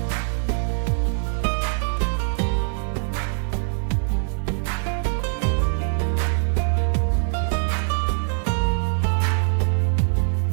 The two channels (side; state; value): left; silent; digital silence